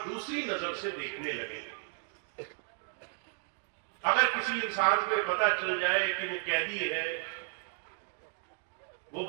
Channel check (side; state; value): left; silent; 55 dB below the other